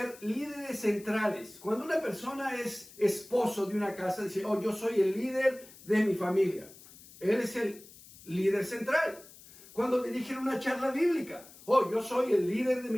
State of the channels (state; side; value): noise; left; hiss, 21 dB below the sound